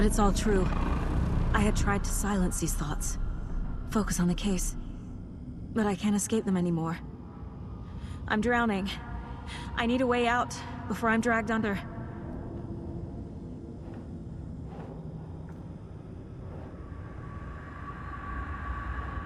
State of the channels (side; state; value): both; identical; correlation 1.00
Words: it's all true. I had tried to silence these thoughts. Focus on the case. But I can't escape them anymore. I'm drowning. I need a way out before I'm dragged under.